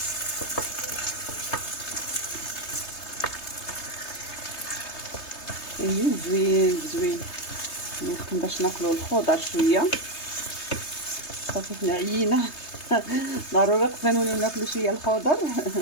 زوين يمكن باش ناكلو الخضر شويه. صافي حنا عيينا ضروري خصنا نوليو ناكلو شويه الخضر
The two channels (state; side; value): late; right; 3.3 ms